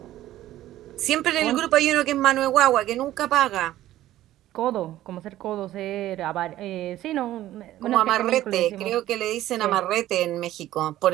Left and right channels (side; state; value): left; quieter; 14.1 dB